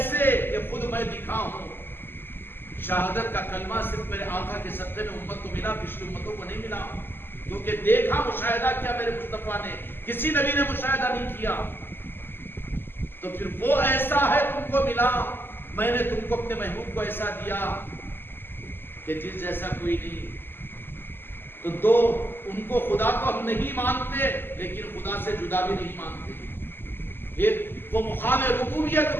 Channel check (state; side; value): late; right; 0.10 ms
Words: کہ خود میں دکھا ہوں شہادت کا کلمہ صرف میرے آقا کے صدقے میں امت کو ملا پچھلی امتوں کو نہیں ملا کیونکہ دیکھا مشاہدہ کیا میرے مصطفیٰ نے کسی نبی نے مشاہدہ نہیں کیا تو پھر وہ ایسا ہے تم کو ملا میں نے تم کو اپنے محبوب کو ایسا دیا کہ جس جیسا کوئی نہیں تو دو ان کو خدا کو ہم نہیں مانتے لیکن خدا سے جدا بھی نہیں مانتے ایک وہ مقام ربوبیت